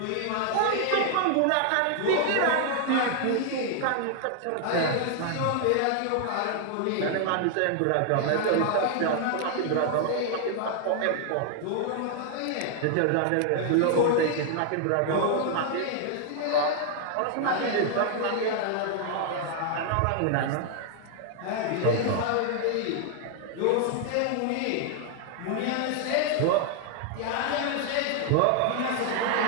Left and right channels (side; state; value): both; different; correlation 0.00